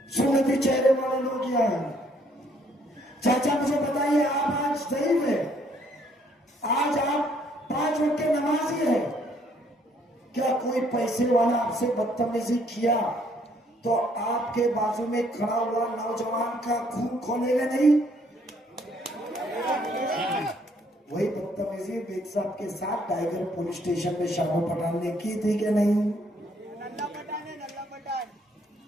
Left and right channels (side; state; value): both; normal; correlation 0.66